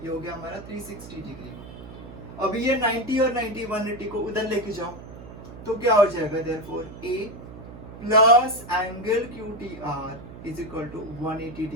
ये हो गया हमारा 360 degree. अभी ये 90 और 90 180 को उधर लेके जाओ तो क्या हो जाएगा therefore A plus angle QTR is equal to 180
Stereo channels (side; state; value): right; noise; hum, 14 dB below the sound